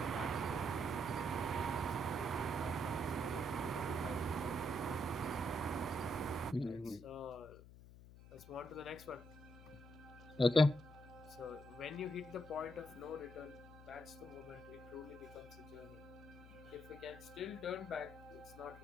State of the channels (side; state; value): left; noise; hum, 17 dB below the sound